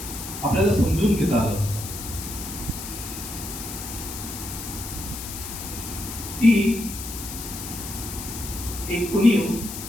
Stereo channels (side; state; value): left; noise; hiss, 9 dB below the sound